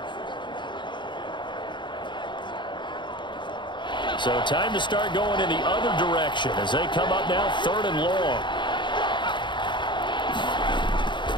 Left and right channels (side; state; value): right; late; 0.23 ms